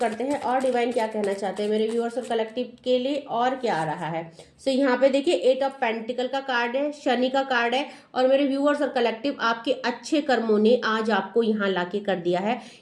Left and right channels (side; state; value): both; identical; correlation 1.00